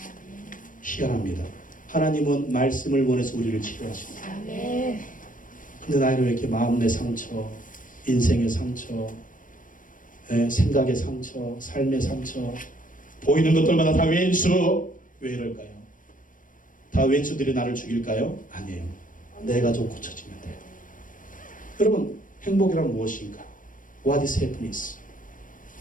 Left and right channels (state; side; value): late; right; 0.38 ms